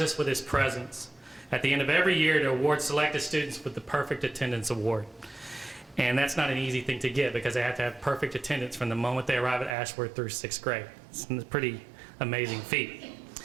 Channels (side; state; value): left; drops out; at 9.8 s